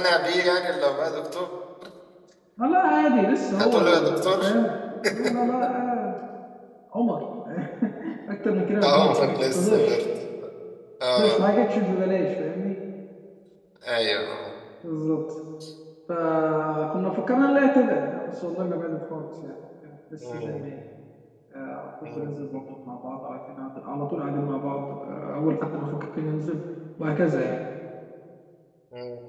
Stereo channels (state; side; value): identical; both; correlation 1.00